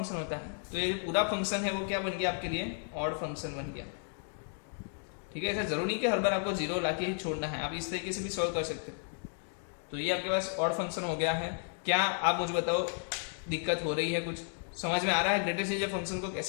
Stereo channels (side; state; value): right; silent; 56 dB below the other